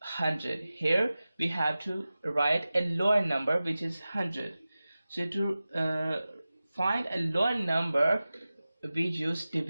100. Here we have to write a lower number, which is 100. So to find a lower number, we use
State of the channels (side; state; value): both; inverted; correlation -0.96